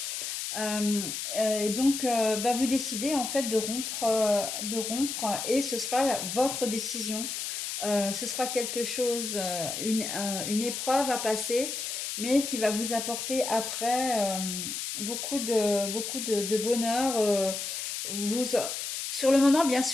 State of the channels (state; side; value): noise; left; hiss, 4 dB below the sound